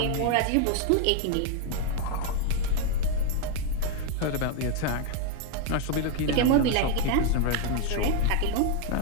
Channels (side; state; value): both; different; correlation 0.01